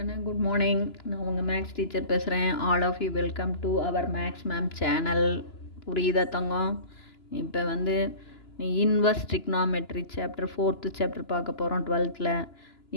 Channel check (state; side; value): late; right; 2.9 ms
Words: good morning. நான் உங்கள் maths teacher பேசுகிறேன். All of you welcome to our maths ma'am channel. புரியுதா தங்கம்? இப்போ inverse trigonometry chapter 4th chapter பார்க்க போகிறோம் 12th.